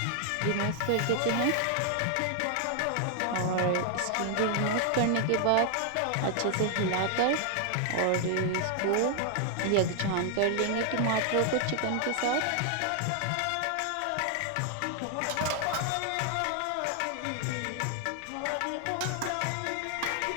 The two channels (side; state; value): both; different; correlation 0.00